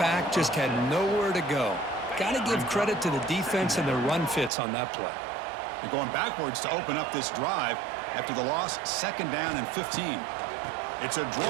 just had nowhere to go. Got to give credit to the defense and the run fits on that play. They're going backwards to open up this drive after the loss, 2nd down and 15. It's a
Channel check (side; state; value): left; drops out; at 4.5 s